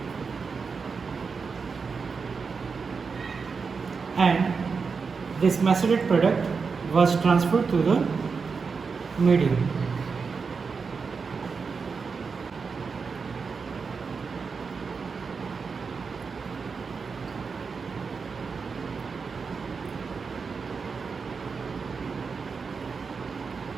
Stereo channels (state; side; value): quieter; left; 5.2 dB